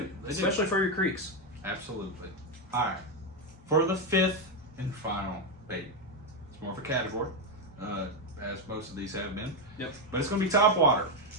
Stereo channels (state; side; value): normal; both; correlation 0.05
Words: Especially for your creeks. Absolutely. All right. For the fifth and final bait, it's more of a category, as most of these have been. Yep. But it's going to be topwater.